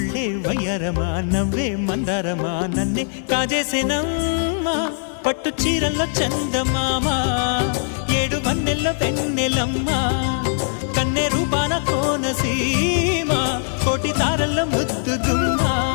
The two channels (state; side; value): silent; right; 65 dB below the other